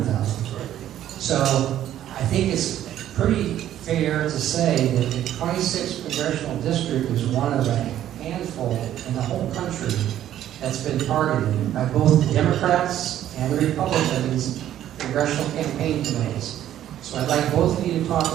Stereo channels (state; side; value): quieter; left; 11.8 dB